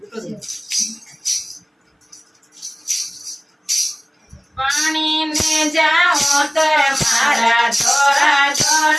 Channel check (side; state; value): both; identical; correlation 1.00